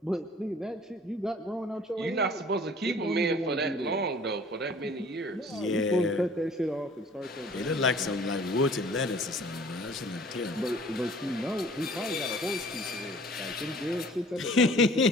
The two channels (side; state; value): both; normal; correlation 0.51